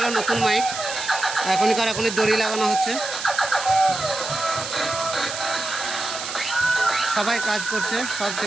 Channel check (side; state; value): right; noise; hiss, 7 dB below the sound